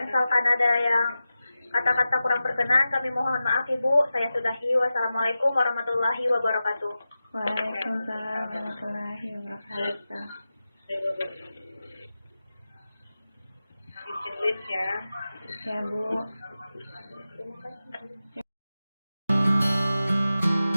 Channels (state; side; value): inverted; both; correlation -0.94